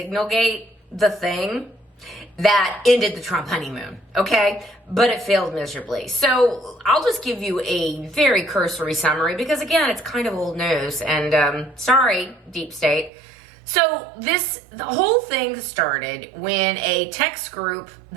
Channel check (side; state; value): left; drops out; at 13.1 s